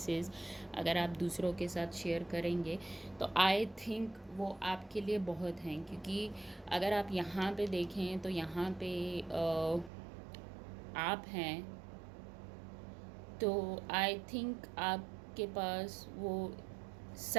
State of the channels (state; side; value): drops out; left; at 9.9 s